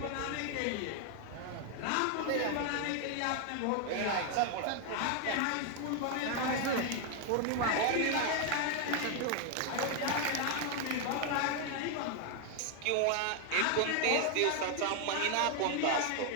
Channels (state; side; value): different; both; correlation 0.01